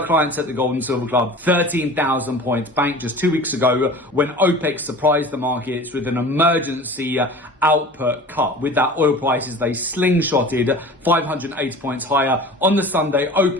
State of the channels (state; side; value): normal; both; correlation 0.39